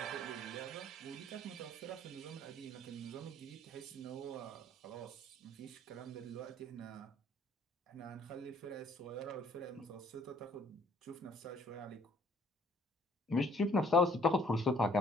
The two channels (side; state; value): both; normal; correlation 0.61